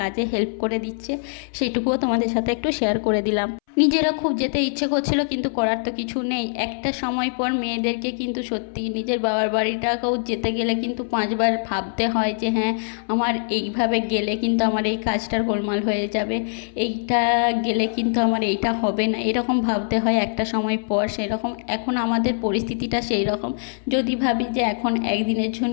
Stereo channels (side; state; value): right; silent; 63 dB below the other